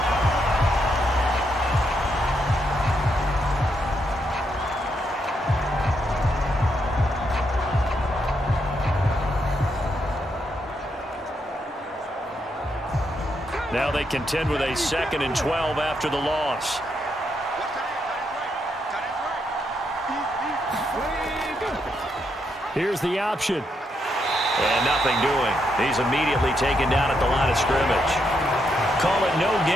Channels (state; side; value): normal; both; correlation 0.79